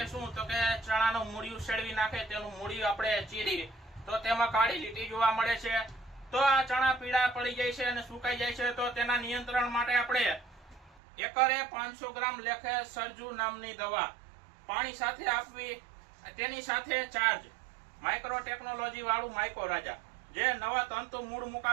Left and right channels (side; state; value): left; drops out; at 11.0 s